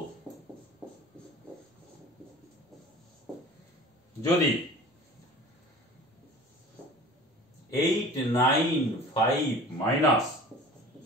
যদি 895 মাইনাস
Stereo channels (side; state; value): both; normal; correlation 0.42